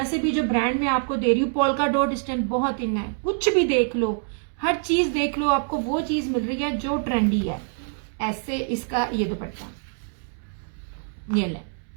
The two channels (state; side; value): silent; left; digital silence